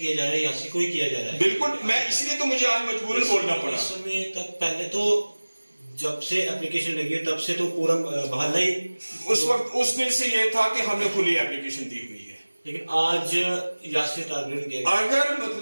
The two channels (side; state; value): both; inverted; correlation -1.00